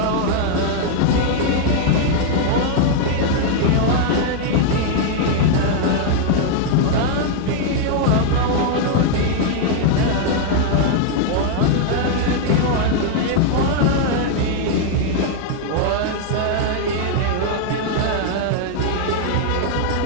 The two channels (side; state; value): both; different; correlation 0.00